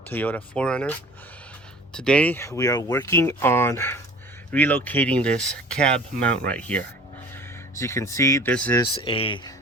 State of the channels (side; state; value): both; normal; correlation 0.46